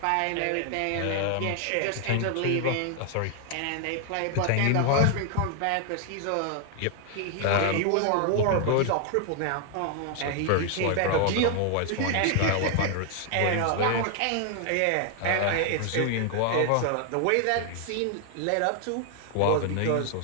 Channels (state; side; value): different; both; correlation 0.00